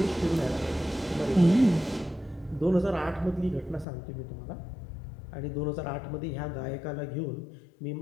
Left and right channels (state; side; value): drops out; right; at 3.9 s